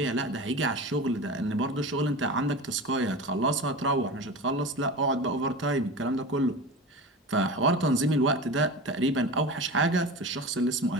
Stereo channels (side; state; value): both; normal; correlation 0.30